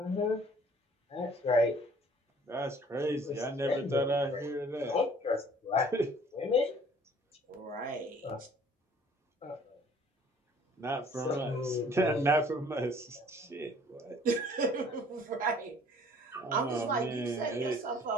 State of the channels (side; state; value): both; normal; correlation 0.54